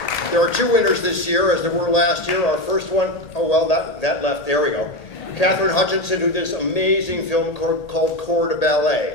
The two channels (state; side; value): late; right; 1.8 ms